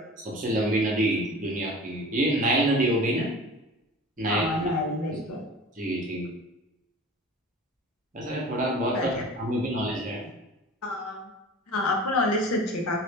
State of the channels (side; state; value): both; normal; correlation 0.39